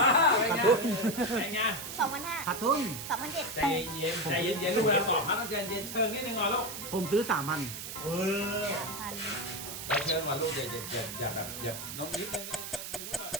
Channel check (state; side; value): noise; right; hiss, 8 dB below the sound